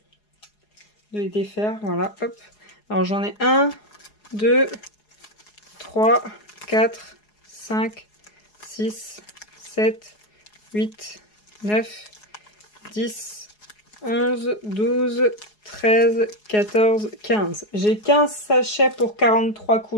défaire. Voilà, hop. Alors j'en ai 1, 2, 3, 4, 5, 6, 7, 8, 9, 10, 11, 12, 13, 14, 15. J'ai 15 sachets pour 43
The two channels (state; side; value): late; right; 4.8 ms